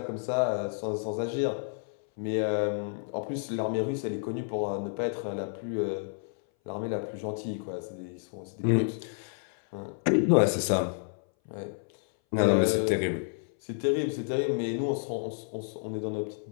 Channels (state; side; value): silent; right; 58 dB below the other